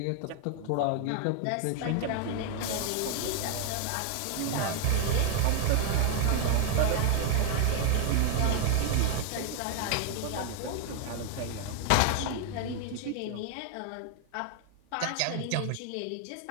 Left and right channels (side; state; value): both; different; correlation 0.00